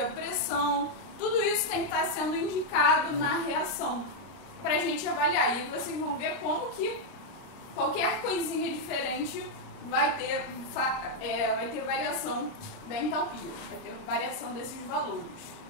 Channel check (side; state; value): right; late; 29 ms